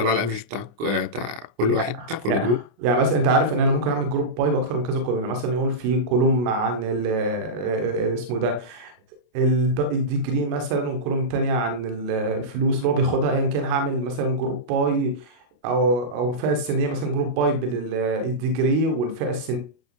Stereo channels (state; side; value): late; left; 25 ms